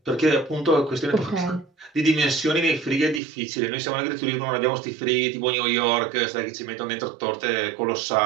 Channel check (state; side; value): drops out; left; at 3.2 s